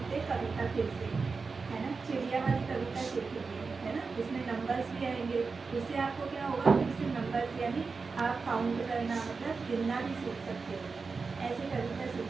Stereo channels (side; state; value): left; quieter; 4.6 dB